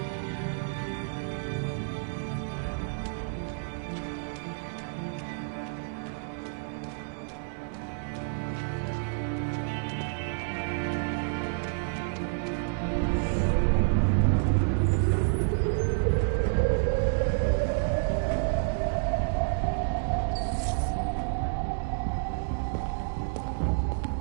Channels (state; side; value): silent; left; 58 dB below the other